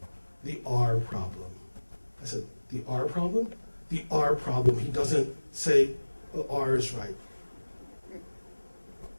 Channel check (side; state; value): both; inverted; correlation -1.00